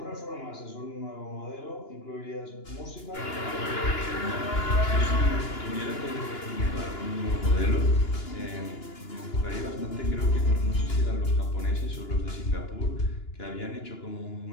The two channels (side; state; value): right; late; 2.9 ms